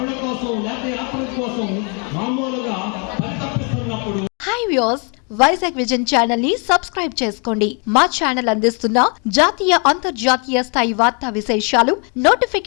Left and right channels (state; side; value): quieter; right; 36.5 dB